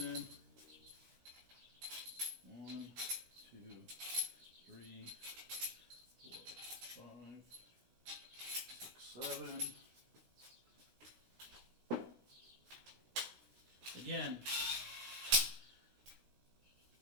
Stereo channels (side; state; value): left; late; 16 ms